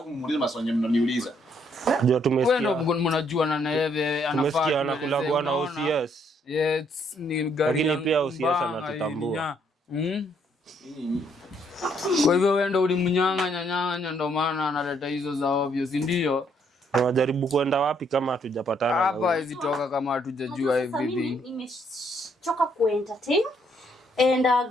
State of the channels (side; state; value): both; normal; correlation 0.70